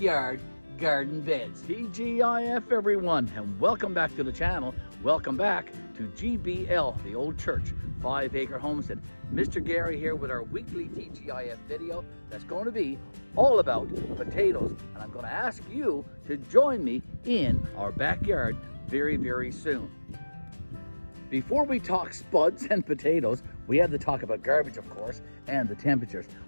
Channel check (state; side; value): inverted; both; correlation -1.00